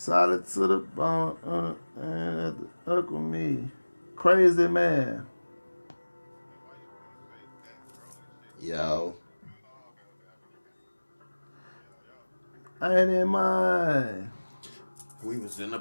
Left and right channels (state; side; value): inverted; both; correlation -1.00